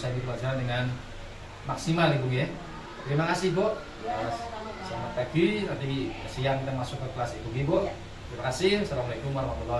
pelajaran dengan maksimal Ibu ya. Terima kasih Bu. Ya, sama-sama, Pak. Selamat pagi. Nanti siang kita masuk ke kelas Ibu Ibu. Ya. Terima kasih. Assalamualaikum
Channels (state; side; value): identical; both; correlation 1.00